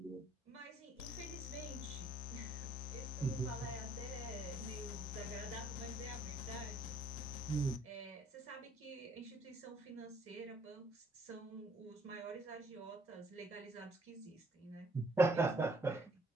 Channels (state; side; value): normal; both; correlation 0.64